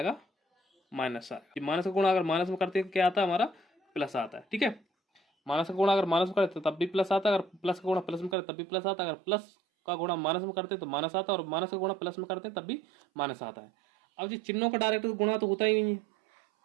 माइनस आएगा। माइनस का गुणा अगर माइनस में करते हैं क्या आता है, हमारा प्लस आता है। ठीक है। माइनस का गुणा अगर माइनस में करते तब भी प्लस आता है, अगर प्लस का गुणा प्लस में करते तब भी प्लस आता है, अगर प्लस का गुणा माइनस में करते तो माइनस आता है, और माइनस का गुणा प्लस में करते हैं तब भी माइनस आता है। अब जी चिन्हों का डायरेक्ट गुणा तो होता ही नहीं है,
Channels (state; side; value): drops out; left; at 8.3 s